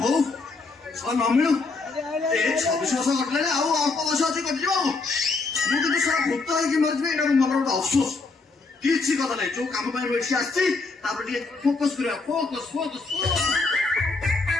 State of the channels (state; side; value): quieter; right; 3.9 dB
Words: ହଉ ନ ମିଳୁ, ଏ 26 ବର୍ଷ କଟିଲାଣି, ଆଉ ଅଳ୍ପ ବର୍ଷ ଅଛି କଟିଯିବ। ଆଉ ମୁଁ କିନ୍ତୁ ସାରା ଭୂତ ହେଇକି ମରିଯିବି, ଏଇଟା ମୋ ମନର ଗୋଟେ ଅଫସୋସ। କିଛି କଥା ନାହିଁ, ଯୋଉ କାମ ପାଇଁ ଏଠି ଆସିଛି ତାପରେ ଟିକେ ଫୋକସ କରିବା। ଫୋକସ ଫୋକସ